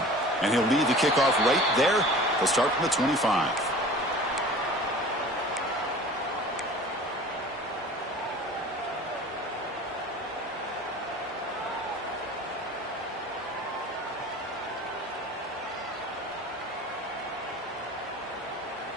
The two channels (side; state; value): both; normal; correlation 0.42